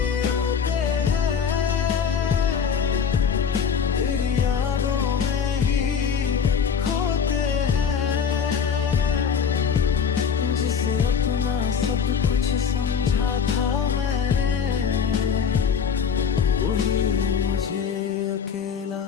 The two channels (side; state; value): right; quieter; 6.9 dB